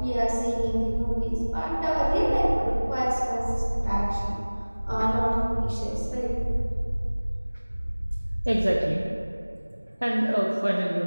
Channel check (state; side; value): inverted; both; correlation -1.00